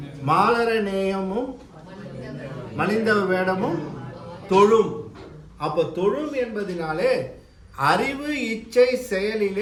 மாலர நேயமும் மலிந்த வேடமும் தொழும். அப்ப தொழும் என்பதினாலே அறிவு இச்சை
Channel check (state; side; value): identical; both; correlation 1.00